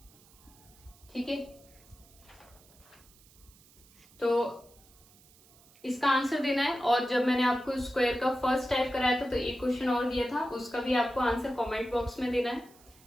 ठीक है, तो इसका आंसर देना है। और जब मैंने आपको स्क्वायर का फर्स्ट टाइप कराया था तो एक क्वेश्चन और दिया था, उसका भी आपको आंसर कमेंट बॉक्स में देना है।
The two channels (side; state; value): right; noise; hiss, 27 dB below the sound